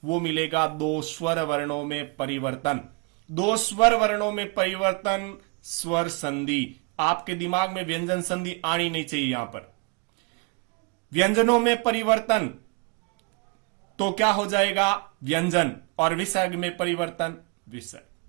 वो मिलेगा 2 स्वर वर्णों में परिवर्तन। 2 स्वर वर्णों में परिवर्तन, स्वर संधि। आपके दिमाग में व्यंजन संधि आनी नहीं चाहिए। यहां पर व्यंजनों में परिवर्तन तो क्या हो जाएगा, व्यंजन, और विसर्ग में परिवर्तन,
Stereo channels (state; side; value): quieter; left; 31.1 dB